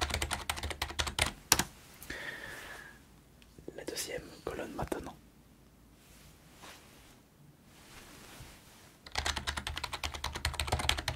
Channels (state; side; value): identical; both; correlation 1.00